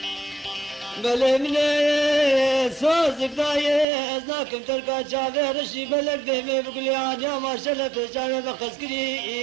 بله مني سوزك دايه ازناكم تركا جاوه رشي بلك دمي بقولي عادي ما شلت جاوه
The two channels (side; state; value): left; drops out; at 3.9 s